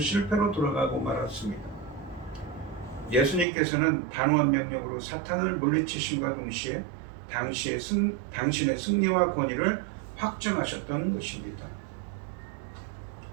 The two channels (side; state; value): left; drops out; at 3.5 s